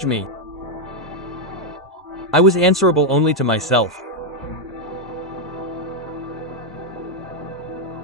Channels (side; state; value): both; normal; correlation 0.01